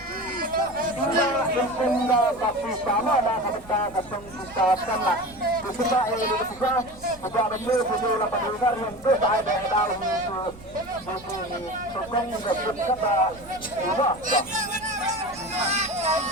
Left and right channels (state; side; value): noise; right; rumble, 21 dB below the sound